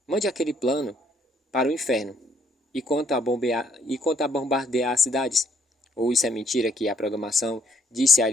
Mande aquele plano para o inferno. E quanto a bombardear as cidades? Ou isso é mentira que a programação disse a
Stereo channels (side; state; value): both; normal; correlation 0.67